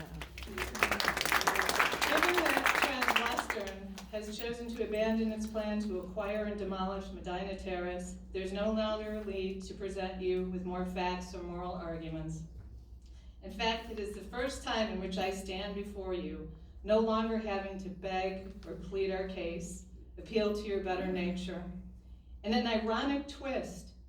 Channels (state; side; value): identical; both; correlation 1.00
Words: Given that Transwestern has chosen to abandon its plan to acquire and demolish Medina Terrace, there's no longer need to present you with more facts or moral arguments. In fact, it is the first time in which I stand before you, no longer having to beg or plead our case, appeal to your better nature. In an ironic twist,